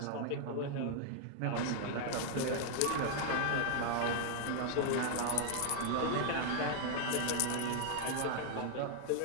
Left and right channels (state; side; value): different; both; correlation 0.00